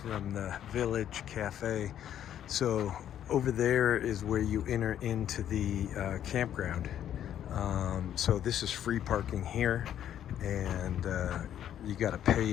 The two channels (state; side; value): quieter; right; 10.5 dB